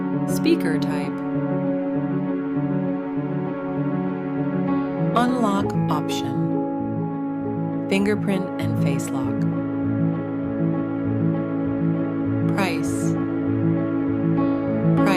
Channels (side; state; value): both; identical; correlation 1.00